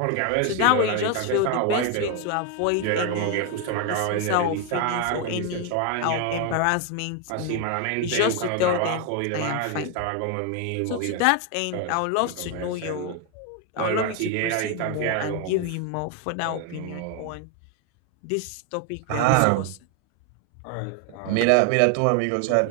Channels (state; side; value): different; both; correlation 0.01